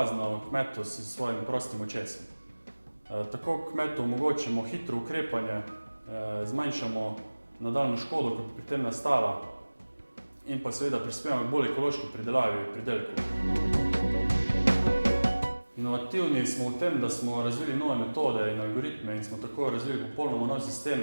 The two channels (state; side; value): inverted; both; correlation -1.00